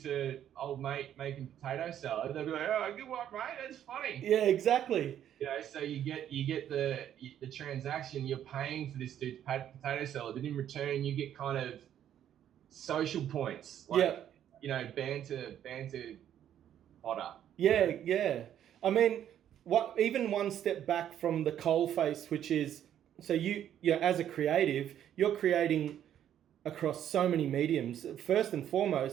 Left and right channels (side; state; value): left; quieter; 10.5 dB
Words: to old mate making potato salad. They'll be like, oh, good work, mate. That's funny. Yeah, exactly. So you get the transaction. You're paying for this dude's potato salad, but in return, you get kind of social points, like banter fodder. Yeah. I mean, even one step back from the coalface, which is, so you as a creative, you're creating across so many mediums. First and